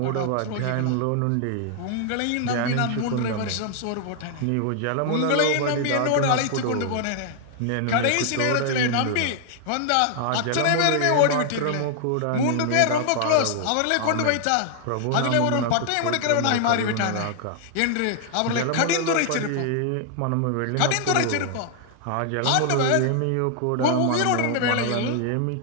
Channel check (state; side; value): different; both; correlation 0.00